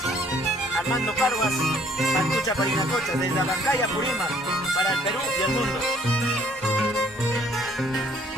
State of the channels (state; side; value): normal; both; correlation 0.61